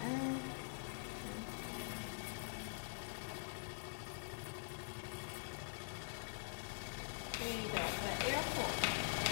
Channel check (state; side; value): silent; right; digital silence